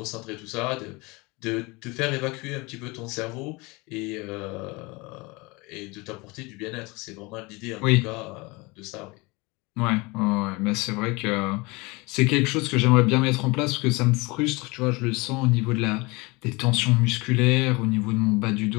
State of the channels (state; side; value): quieter; right; 25.2 dB